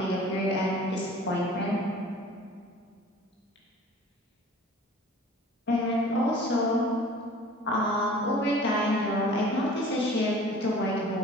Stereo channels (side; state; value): both; normal; correlation 0.46